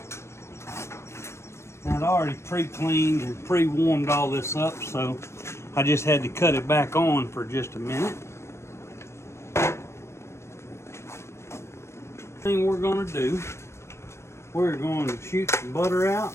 Now, I'd already pre-cleaned and pre-warmed all this up, so I just had to cut it back on for just a minute. Thing we're going to do, we're going to shoot some butter out.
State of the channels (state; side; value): late; right; 0.13 ms